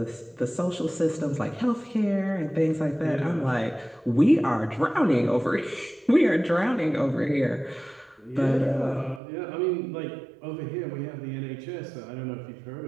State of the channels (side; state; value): left; drops out; at 9.2 s